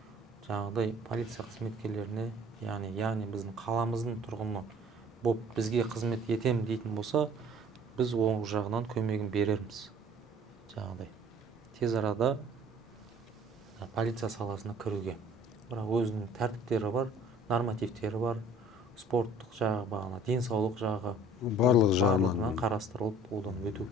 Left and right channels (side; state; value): both; normal; correlation 0.52